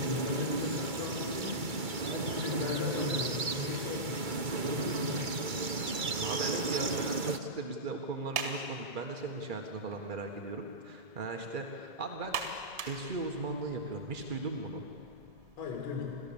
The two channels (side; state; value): left; late; 2.3 ms